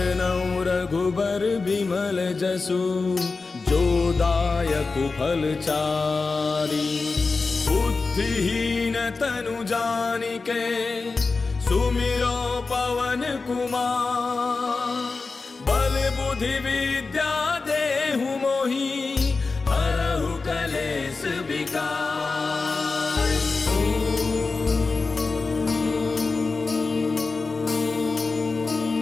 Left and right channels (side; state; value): right; quieter; 4.1 dB